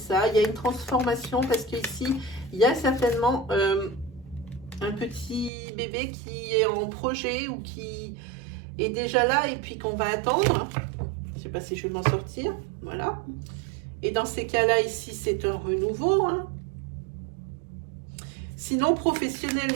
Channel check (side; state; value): left; drops out; at 5.5 s